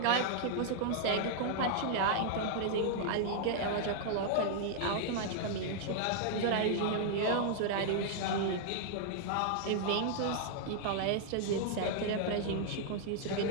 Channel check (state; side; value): different; both; correlation -0.01